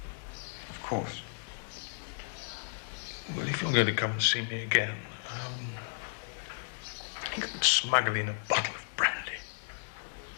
Of course. Well, if you're going to come and see me again, you could smuggle in a bottle of brandy.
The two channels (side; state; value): right; silent; digital silence